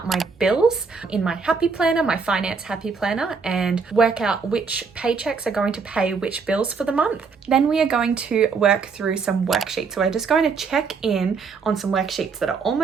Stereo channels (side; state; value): left; quieter; 5.1 dB